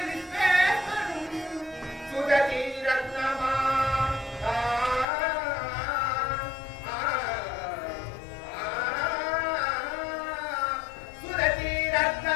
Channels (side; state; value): right; drops out; at 5.1 s